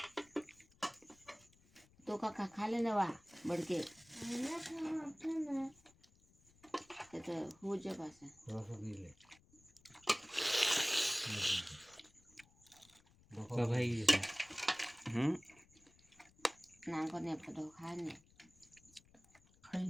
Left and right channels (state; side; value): noise; left; rumble, 28 dB below the sound